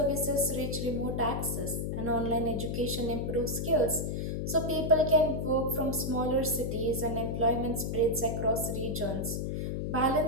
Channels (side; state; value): left; noise; hum, 2 dB below the sound